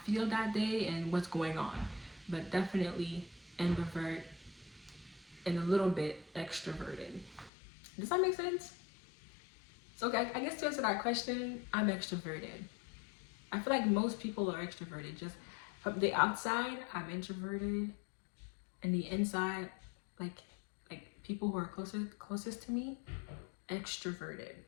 feel that day and what's going on. But definitely ambivert and a little bit extroverted. Does that make sense? So I guess to answer that question, I'm extroverted. I feel like most people are extroverted. Just from the outside, I'm introverted. And the inside, like people who are closest to me, extroverted.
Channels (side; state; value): right; drops out; at 7.5 s